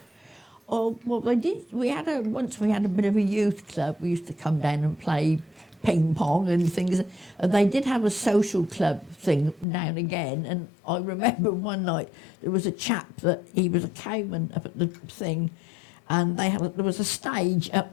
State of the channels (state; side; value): drops out; right; at 9.7 s